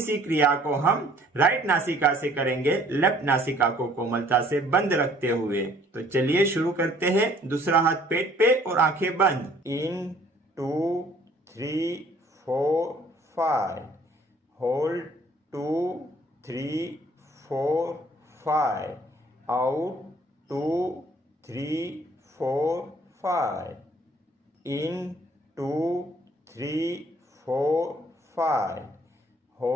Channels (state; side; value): normal; both; correlation 0.58